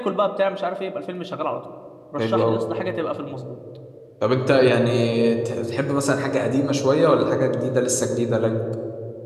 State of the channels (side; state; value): both; identical; correlation 1.00